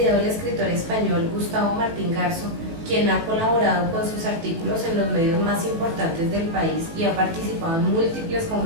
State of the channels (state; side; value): late; left; 18 ms